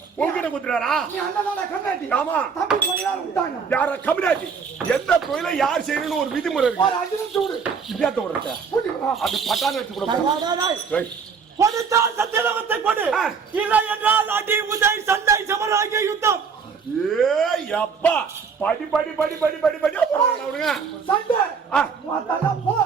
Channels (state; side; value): quieter; left; 5.9 dB